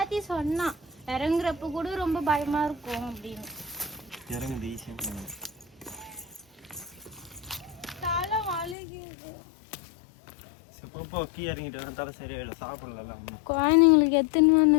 சொன்னா இறங்குறப்ப கூட ரொம்ப பயமா இருக்கும் அப்படின்னு இறங்குது ஈஸியாக சொன்னாங்க தலை வலிக்குது இப்போ கீ இறங்கிட்டு வர தலை சரியாயிடும் சாப்பிடலாம் ஒன்றும் குழந்தைங்களுக்கு எத்தனை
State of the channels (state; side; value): drops out; right; at 8.8 s